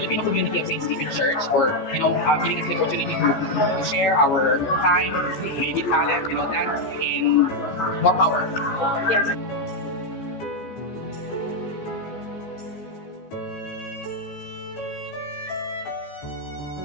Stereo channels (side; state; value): right; late; 14 ms